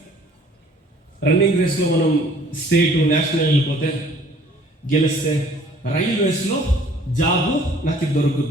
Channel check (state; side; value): normal; both; correlation 0.55